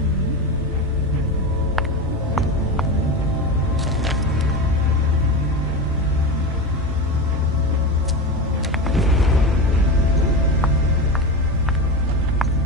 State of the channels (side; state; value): both; normal; correlation 0.22